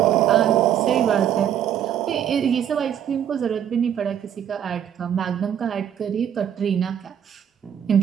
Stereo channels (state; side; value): quieter; left; 9.6 dB